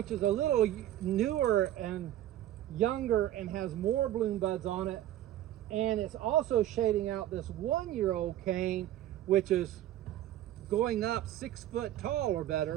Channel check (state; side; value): quieter; left; 13.0 dB